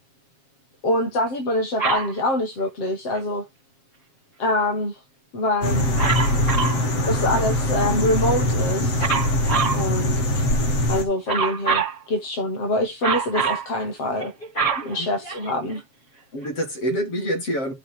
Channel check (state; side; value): late; right; 7.4 ms